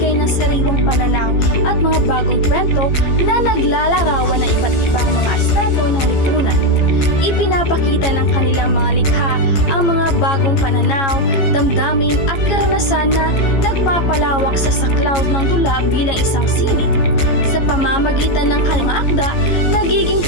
ng sariwang pananaw at mga bagong kwento na naglalarawan ng iba't ibang mga aspeto ng lipunan. Ipinapakita ng kanilang mga likha ang mga bagong pananaw, damdamin at karanasan na nagpapalawak sa saklaw ng dula bilang isang sining. Sa pamamagitan ng kanilang akda, nagiging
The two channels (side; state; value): right; late; 15 ms